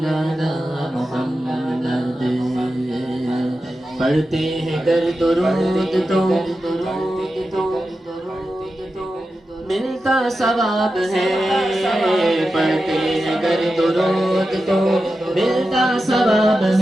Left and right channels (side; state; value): both; normal; correlation 0.91